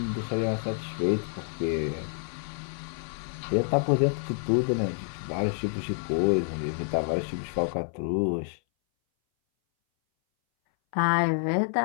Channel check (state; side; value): silent; right; 59 dB below the other